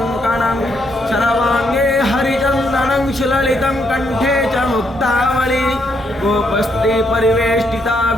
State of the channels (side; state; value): both; normal; correlation 0.75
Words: शरवाङ्गे हरिचन्दनं सुललितं कण्ठे च मुक्तावली गोपस्त्री परिवेष्टिता